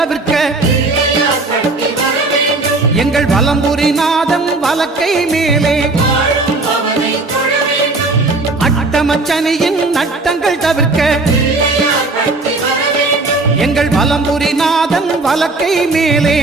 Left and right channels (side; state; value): left; quieter; 3.3 dB